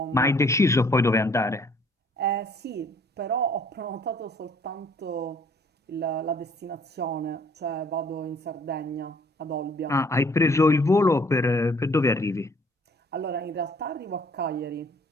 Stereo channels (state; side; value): normal; both; correlation 0.59